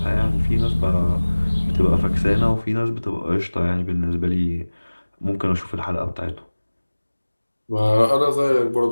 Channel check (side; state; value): both; inverted; correlation -1.00